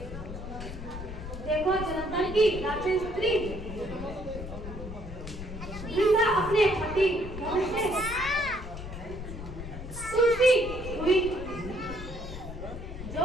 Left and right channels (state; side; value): noise; left; rumble, 9 dB below the sound